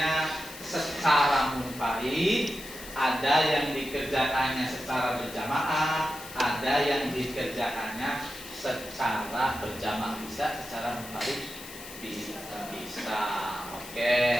secara munfarid, ada yang dikerjakannya secara berjamaah, ada yang dikerjakannya secara berjamaah. Bisa secara munfarid? Bisa. Oke.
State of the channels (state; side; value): noise; left; hiss, 14 dB below the sound